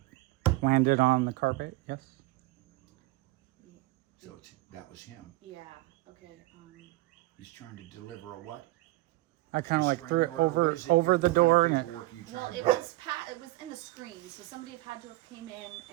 it landed on the carpet. Yes. So that was him. Yeah. Okay. He's trying to deliver a what? I kind of like Restraining threw it order? What over is it? over What the kind of door and it. paperwork are you trying Well, to it bring? was in the screen, so somebody had to have came in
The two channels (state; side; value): quieter; left; 19.5 dB